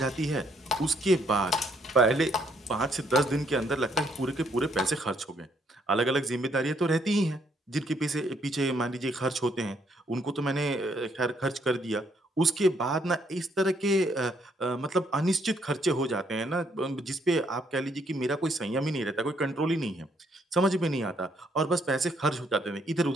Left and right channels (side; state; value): both; normal; correlation 0.70